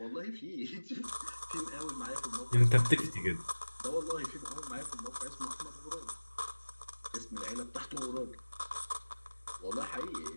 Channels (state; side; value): inverted; both; correlation -1.00